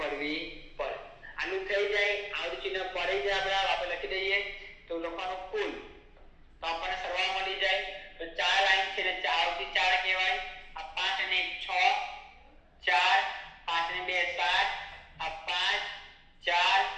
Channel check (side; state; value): both; identical; correlation 1.00